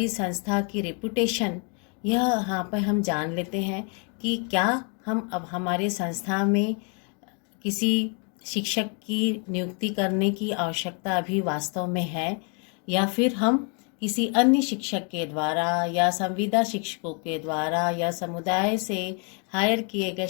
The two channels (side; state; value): right; quieter; 38.0 dB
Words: संस्था की रेपुटेशन, यह यहाँ पर हम जान लेते हैं कि क्या हम अब हमारे संस्था में किसी शिक्षक की नियुक्ति करने की आवश्यकता अभी वास्तव में है, या फिर हम किसी अन्य शिक्षक के द्वारा या संविदा शिक्षकों के द्वारा या समुदाय से हायर किए गए